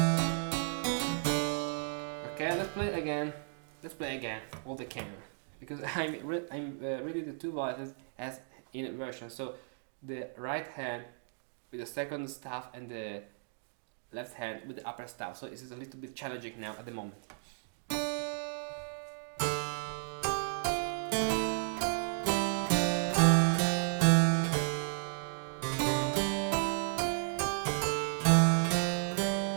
Okay, let's play again. Let's play again all the canon, because I'm reading the two voices as in inversion. So the right hand with the second staff and the left hand with the upper staff. So this is a little bit challenging now at the moment.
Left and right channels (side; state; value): left; silent; digital silence